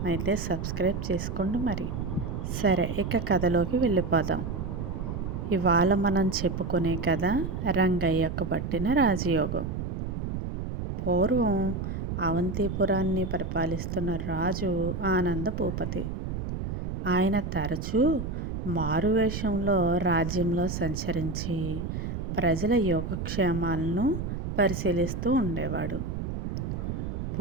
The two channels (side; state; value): right; noise; rumble, 4 dB below the sound